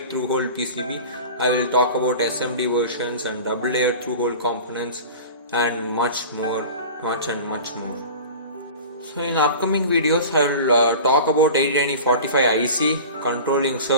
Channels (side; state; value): both; inverted; correlation -0.36